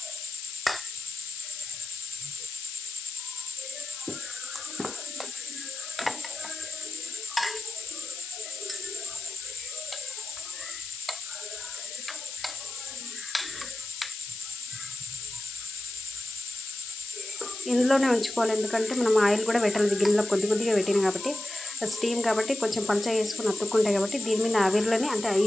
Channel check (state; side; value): noise; left; hiss, 9 dB below the sound